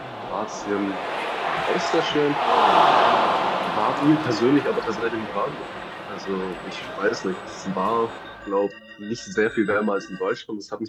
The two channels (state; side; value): identical; both; correlation 1.00